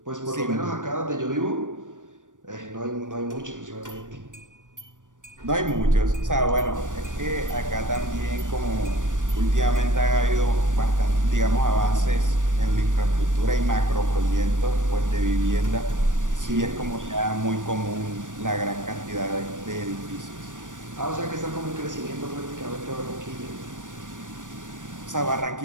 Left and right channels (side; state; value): left; late; 0.87 ms